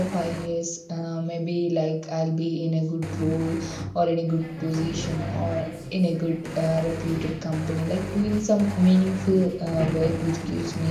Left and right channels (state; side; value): identical; both; correlation 1.00